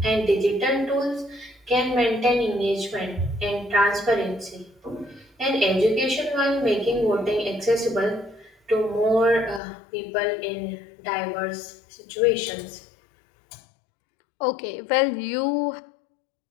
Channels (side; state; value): right; drops out; at 9.6 s